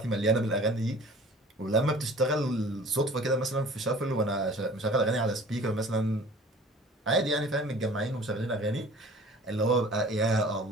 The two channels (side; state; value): both; normal; correlation 0.46